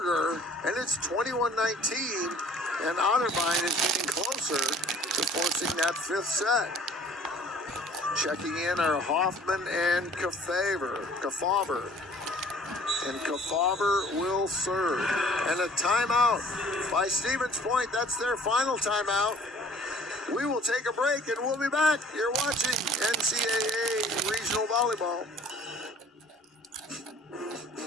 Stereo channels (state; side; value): normal; both; correlation 0.52